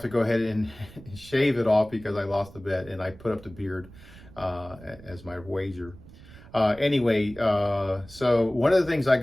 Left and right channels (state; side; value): noise; right; rumble, 19 dB below the sound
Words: to go ahead and shave it off because I lost the bet and I put up the beard as my wager. So one of the things I